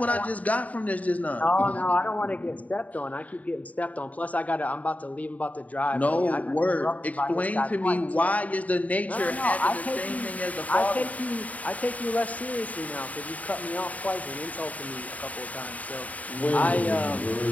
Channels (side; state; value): right; late; 0.071 ms